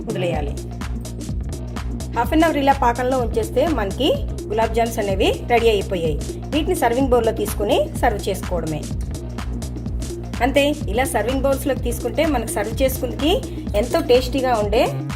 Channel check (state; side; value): identical; both; correlation 1.00